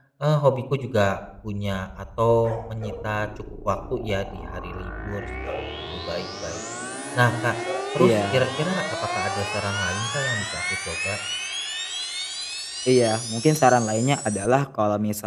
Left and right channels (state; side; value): identical; both; correlation 1.00